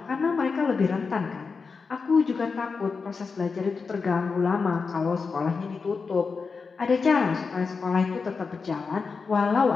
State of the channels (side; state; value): right; quieter; 4.9 dB